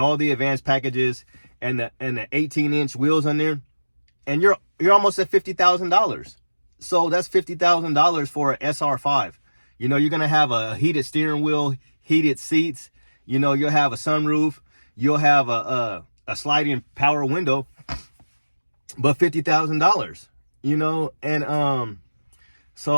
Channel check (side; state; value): both; inverted; correlation -1.00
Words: all the advanced packages and the 18-inch wheels on there, and you're almost at $50,000. So that's $50,000 for an SR5. You're gonna have a heated steering wheel, heated seats. You'll have a sunroof. You'll have a sliding power window. But $50,000, and so